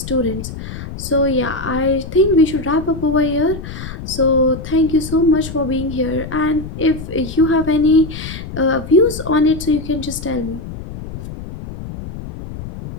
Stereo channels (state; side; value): noise; left; rumble, 10 dB below the sound